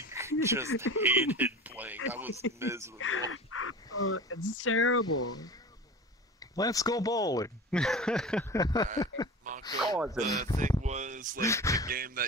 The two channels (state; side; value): normal; both; correlation 0.33